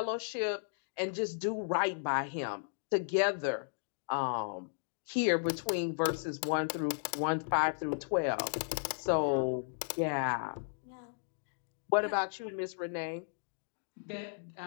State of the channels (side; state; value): right; silent; digital silence